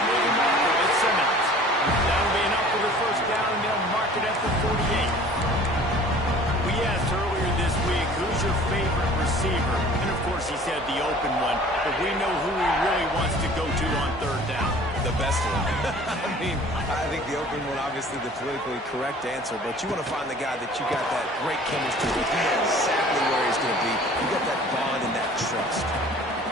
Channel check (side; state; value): both; normal; correlation 0.48